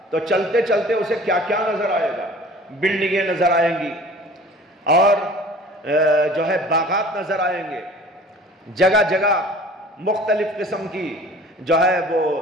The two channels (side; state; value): both; normal; correlation 0.46